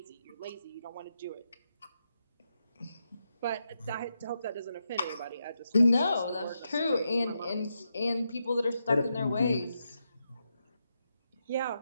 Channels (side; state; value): both; inverted; correlation -0.85